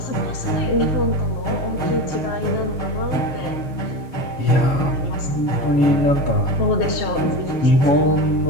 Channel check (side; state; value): right; late; 7.5 ms